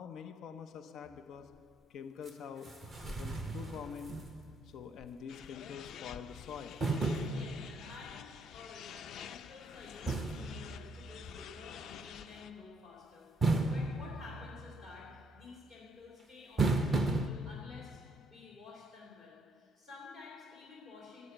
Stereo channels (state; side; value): normal; both; correlation 0.71